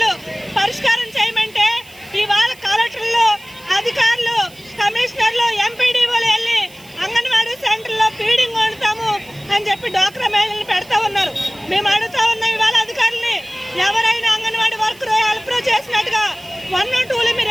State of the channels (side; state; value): right; noise; hiss, 24 dB below the sound